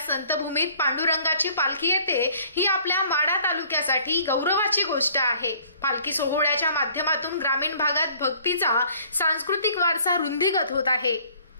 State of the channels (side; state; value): both; inverted; correlation -0.56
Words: संतभूमीत पांडुरंगाची पालखी येते ही आपल्या माढा तालुक्यासाठी गौरवाची गोष्ट आहे। पालखी सोहळ्याच्या माध्यमातून ग्रामीण भागात भक्तीचा सांस्कृतिक वारसा रुंदीगत होत आहे।